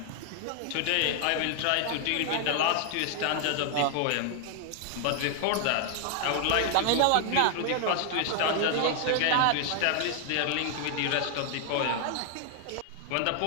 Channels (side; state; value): both; different; correlation 0.00